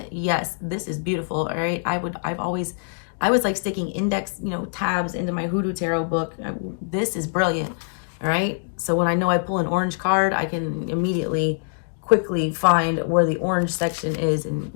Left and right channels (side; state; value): right; silent; digital silence